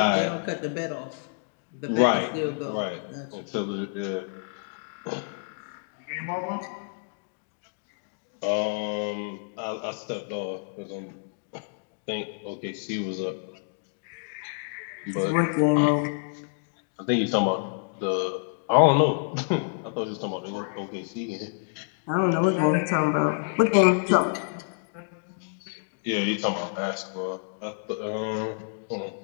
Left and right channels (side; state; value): right; silent; digital silence